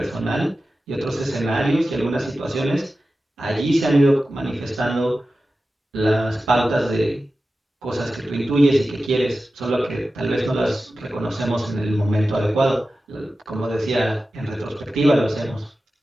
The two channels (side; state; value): both; normal; correlation 0.94